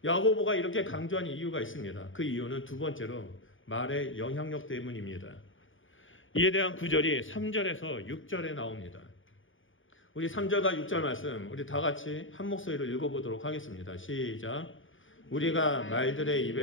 야고보가 이렇게 강조한 이유가 있습니다. 그 이유는 두 번째로 말의 영향력 때문입니다. 이에 대한 구절이 3절에서 6절에 나옵니다. 우리 3절과 6절 말씀 우리 다 같이 한 목소리로 읽어보도록 하겠습니다. 시작. 우리가 말들의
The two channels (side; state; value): right; late; 0.57 ms